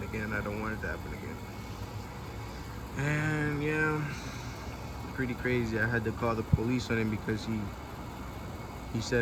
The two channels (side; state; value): both; identical; correlation 1.00